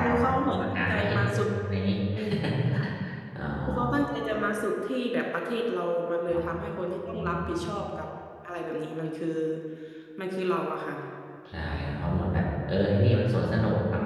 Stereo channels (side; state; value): both; identical; correlation 1.00